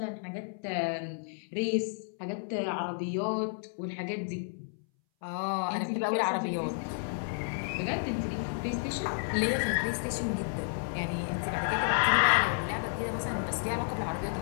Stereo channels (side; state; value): right; silent; 57 dB below the other